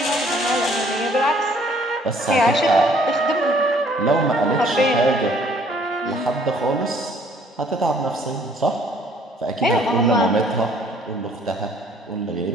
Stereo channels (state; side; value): normal; both; correlation 0.60